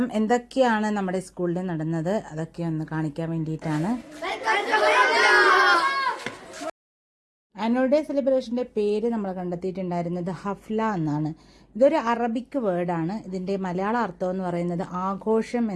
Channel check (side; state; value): both; identical; correlation 1.00